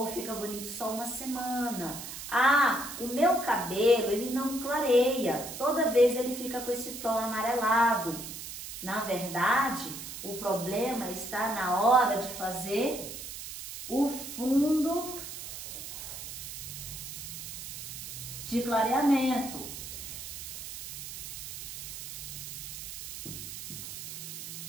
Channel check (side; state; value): right; noise; hiss, 9 dB below the sound